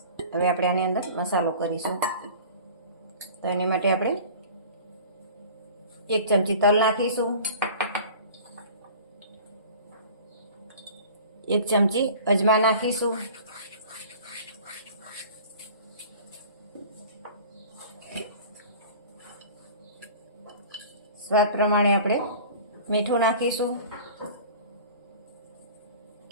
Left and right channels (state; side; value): inverted; both; correlation -0.42